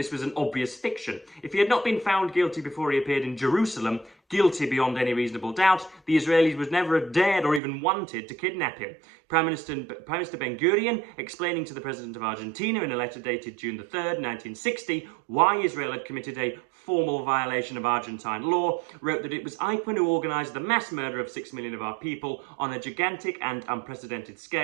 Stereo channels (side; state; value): left; drops out; at 7.6 s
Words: was an obvious fiction. If he had not been found guilty before he appeared in Jerusalem, guilty beyond any reasonable doubt, the Israelis would never have dared or even wanted to kidnap him. Prime Minister Ben-Gurion, explaining to the President of Argentina in a letter dated June the 3rd, 1960, why Israel had committed a formal violation of Argentine law, wrote that it was Eichmann who organised the mass murder of 6 million of our people on a gigantic and unprecedented